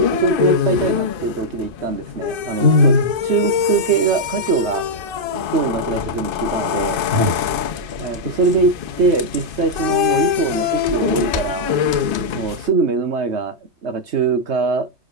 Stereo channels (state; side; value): late; left; 2.5 ms